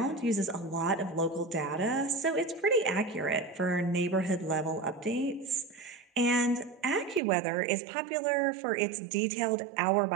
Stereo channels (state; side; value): drops out; left; at 7.2 s